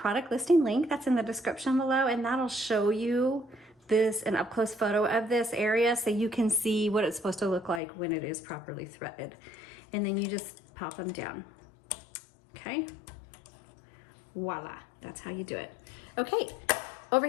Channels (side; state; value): right; drops out; at 7.8 s